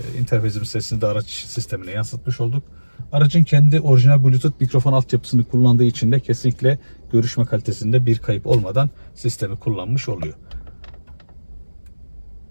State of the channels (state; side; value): inverted; both; correlation -1.00